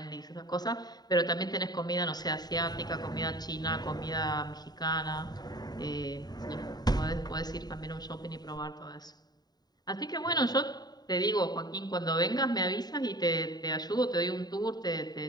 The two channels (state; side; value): late; right; 0.20 ms